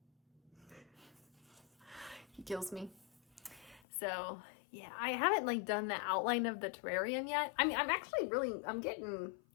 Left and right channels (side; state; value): right; drops out; at 3.8 s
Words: He kills me. So yeah, I haven't like done the outline of the terrarium yet. I mean, I'm getting...